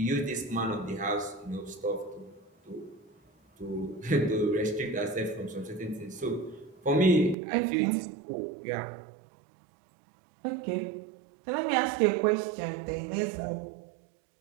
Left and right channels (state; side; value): drops out; left; at 7.4 s